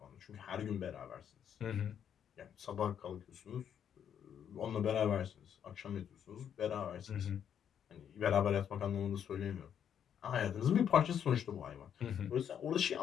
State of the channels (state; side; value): quieter; right; 8.8 dB